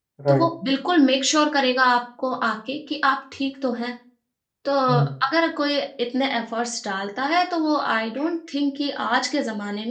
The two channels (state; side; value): identical; both; correlation 1.00